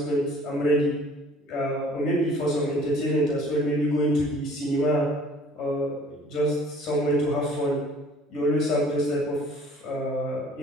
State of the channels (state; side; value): normal; both; correlation 0.53